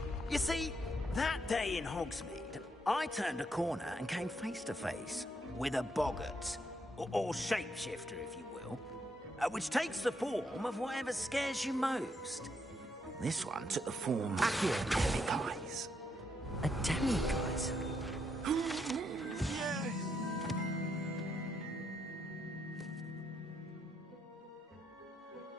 You see, that day in Hogsmeade, I turned a corner and came face to face with a boggart, or shapeshifter, if you will, which takes the form of whatever scares you most. This one took the form of demiguise. A demiguise?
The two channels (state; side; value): normal; both; correlation 0.77